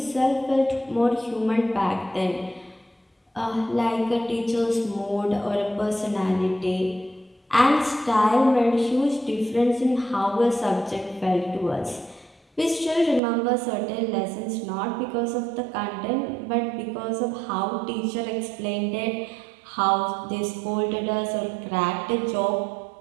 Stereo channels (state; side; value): drops out; left; at 13.2 s